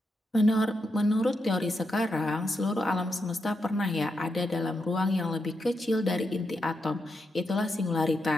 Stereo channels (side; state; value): both; normal; correlation 0.84